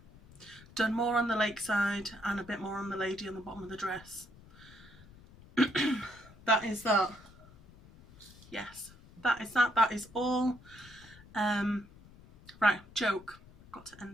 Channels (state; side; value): noise; left; rumble, 22 dB below the sound